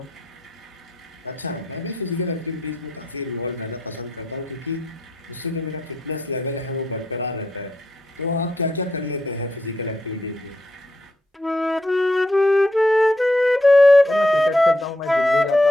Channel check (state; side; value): normal; both; correlation 0.79